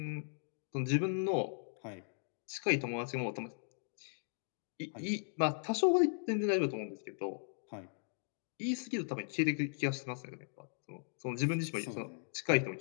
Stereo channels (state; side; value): silent; right; digital silence